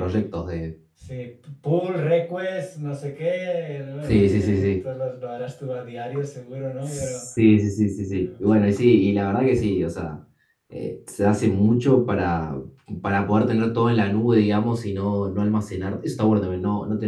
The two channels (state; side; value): identical; both; correlation 1.00